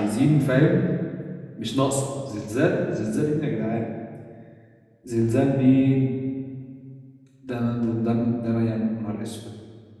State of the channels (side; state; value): both; identical; correlation 1.00